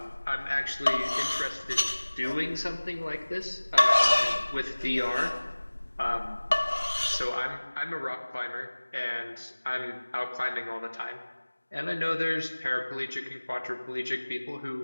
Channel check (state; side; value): inverted; both; correlation -1.00